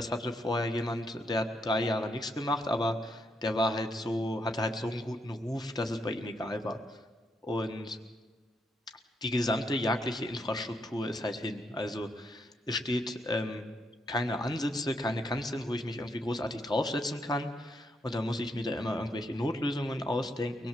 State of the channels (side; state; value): both; normal; correlation 0.78